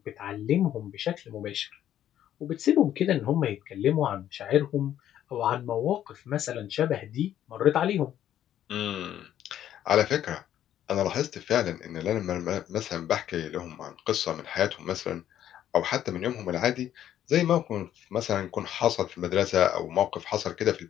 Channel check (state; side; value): quieter; right; 11.2 dB